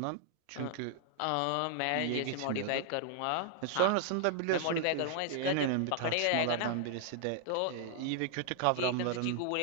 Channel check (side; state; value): both; different; correlation 0.00